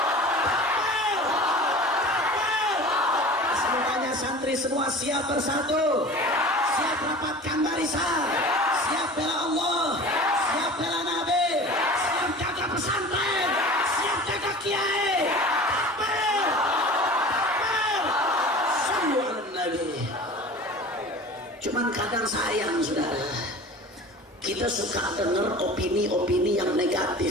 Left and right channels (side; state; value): both; normal; correlation 0.39